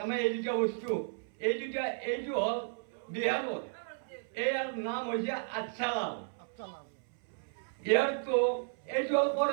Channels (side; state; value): left; silent; 55 dB below the other